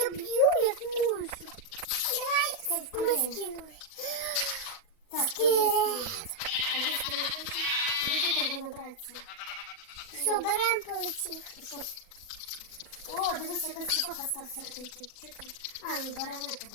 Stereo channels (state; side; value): late; right; 40 ms